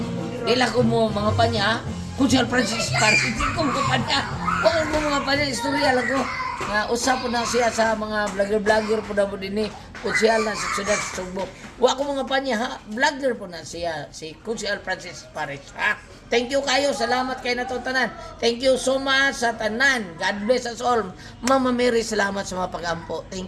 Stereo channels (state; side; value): identical; both; correlation 1.00